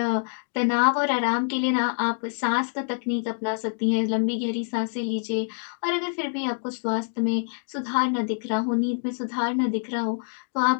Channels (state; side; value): silent; right; digital silence